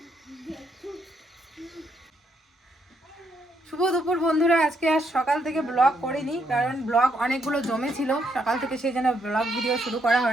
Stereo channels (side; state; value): both; normal; correlation 0.75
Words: শুভ দুপুর বন্ধুরা। আজকে আর সকাল থেকে ব্লগ করিনি, কারণ ব্লগ অনেকগুলো জমেছিল সকাল থেকে, সেই জন্য ব্লগ ভিডিও শুরু করা